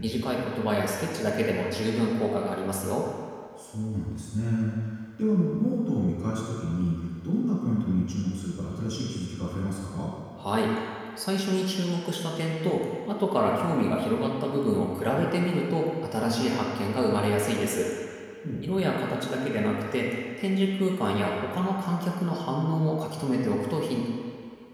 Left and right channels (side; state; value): both; identical; correlation 1.00